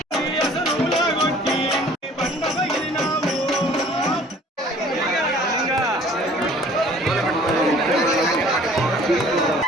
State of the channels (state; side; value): normal; both; correlation 0.52